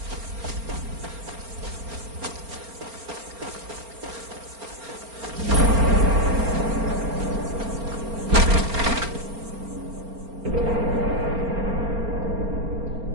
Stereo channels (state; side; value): late; left; 4.4 ms